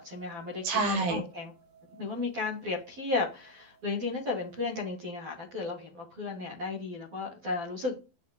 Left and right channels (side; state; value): left; late; 12 ms